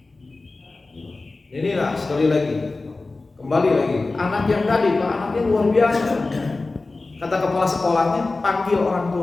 Inilah sekali lagi, kembali lagi, anak yang tadi, Pak, anaknya luar biasa. Kata kepala sekolahnya, panggil orang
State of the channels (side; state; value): right; quieter; 3.4 dB